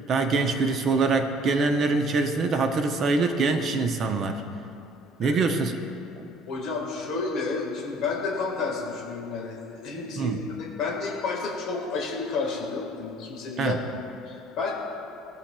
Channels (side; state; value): both; normal; correlation 0.55